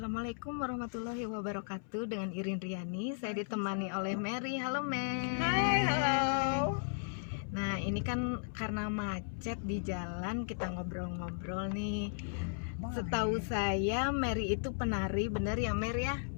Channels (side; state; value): right; silent; 54 dB below the other